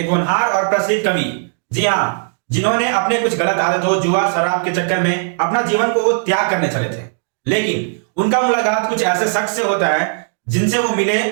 होनहार और प्रसिद्ध कवि, जी हाँ, जिन्होंने अपने कुछ गलत आदतों, जुआ शराब के चक्कर में अपना जीवन को त्याग करने चले थे, लेकिन उनका मुलाकात कुछ ऐसे शख्स से होता है जिनसे वो मिले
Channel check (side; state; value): left; silent; digital silence